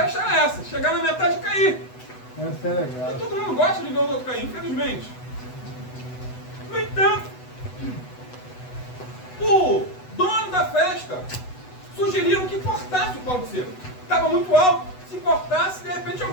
era essa, chegar na metade e cair. Essa é legal. E todo mundo gosta de ver os outros cair, infelizmente. No entanto, o dono da festa sugeriram que cortasse o pau de sebo. Estava muito alto, se cortasse, de repente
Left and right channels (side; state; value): right; late; 8.0 ms